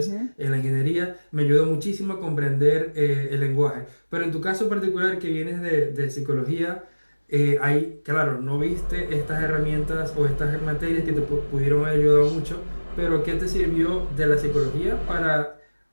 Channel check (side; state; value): both; inverted; correlation -1.00